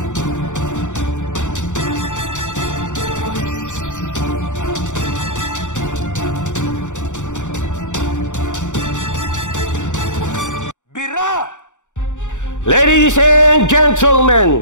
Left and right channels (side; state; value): right; late; 0.85 ms